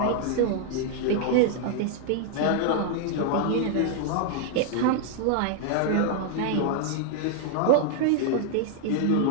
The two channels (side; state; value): both; different; correlation -0.01